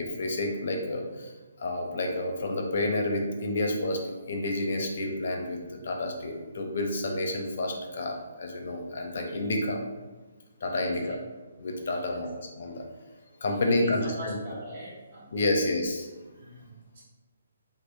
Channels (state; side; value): inverted; both; correlation -0.70